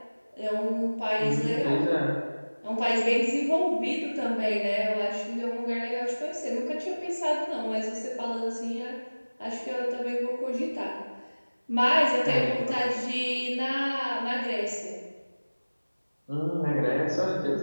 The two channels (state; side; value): inverted; both; correlation -1.00